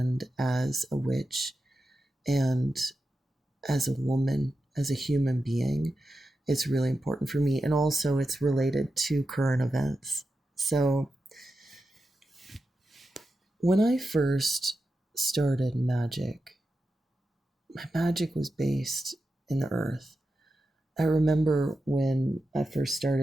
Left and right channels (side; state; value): both; normal; correlation 0.90